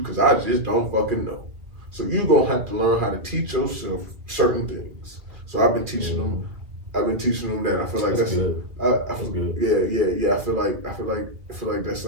I just don't fucking know. So you're going to have to learn how to teach yourself certain things. So I've been teaching them. I've been teaching them that. I feel like that's good. That's good. Yeah. I feel like that's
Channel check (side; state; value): left; late; 2.1 ms